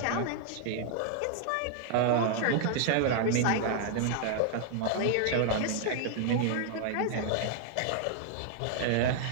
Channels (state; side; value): different; both; correlation 0.00